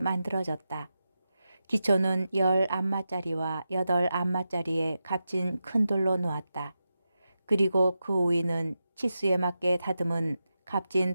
기초는 10안마짜리와 8안마짜리의 값진 큰 돌로 놓았다. 그리고 그 위는 치수에 맞게 다듬은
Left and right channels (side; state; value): both; inverted; correlation -0.90